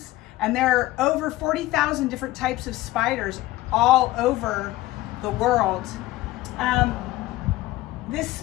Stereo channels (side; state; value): right; quieter; 17.3 dB